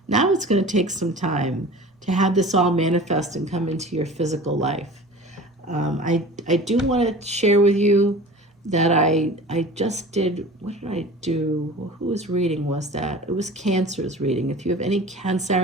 now it's gonna take some time to have this all manifest and come into your physical life. I do want to share with you that I just did, what did I do? Whose reading was that? It was Cancer's reading. If you have any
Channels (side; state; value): both; normal; correlation 0.39